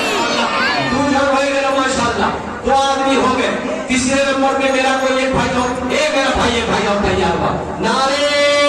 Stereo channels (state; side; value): identical; both; correlation 1.00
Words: माशाअल्लाह 2 आदमी हो गए। तीसरे नंबर पे मेरा कोई एक भाई हो, मेरा भाई एक भाई और तैयार हुआ। नारे